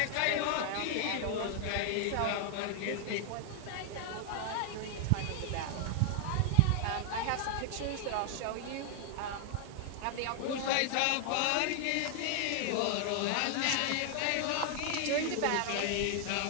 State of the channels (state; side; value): different; both; correlation 0.00